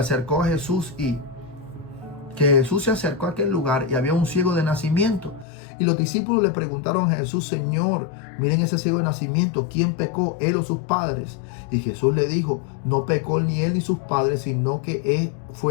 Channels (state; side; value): drops out; right; at 5.5 s